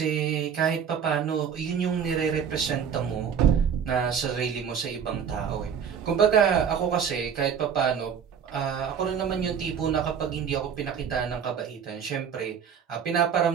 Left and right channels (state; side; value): quieter; left; 7.5 dB